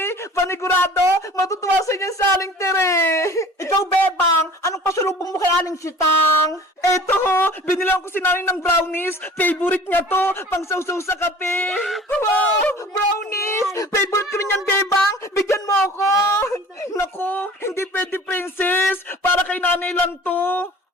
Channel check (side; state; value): both; normal; correlation 0.45